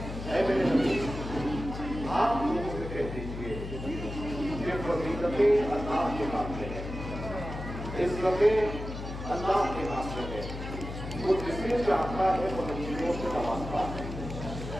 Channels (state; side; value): noise; left; hum, 8 dB below the sound